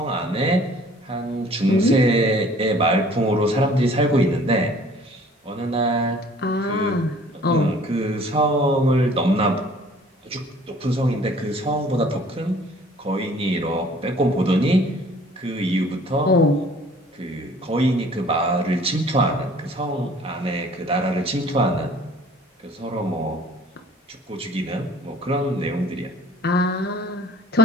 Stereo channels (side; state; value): both; normal; correlation 0.53